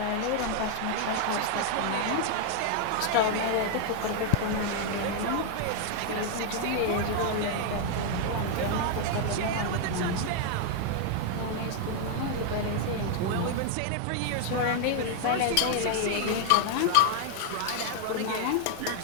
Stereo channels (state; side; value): different; both; correlation 0.00